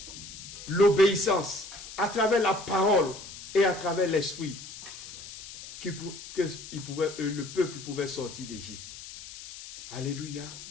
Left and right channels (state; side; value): noise; left; hiss, 13 dB below the sound